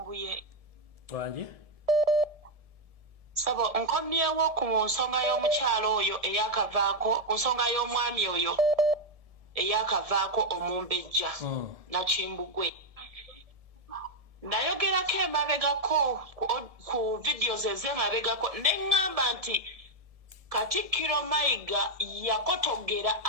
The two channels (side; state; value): left; late; 1.7 ms